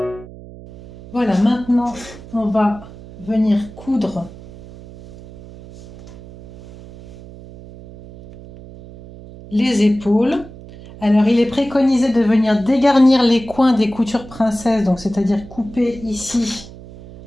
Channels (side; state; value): right; noise; hum, 17 dB below the sound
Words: maintenant, on va venir coudre les épaules. Alors, il est préconisé de venir dégarnir les coins des coutures princesse, donc c'est-à-dire couper ici.